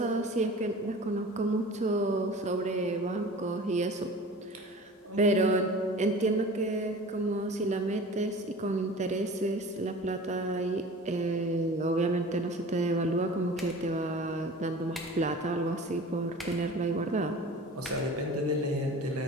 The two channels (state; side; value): normal; both; correlation 0.39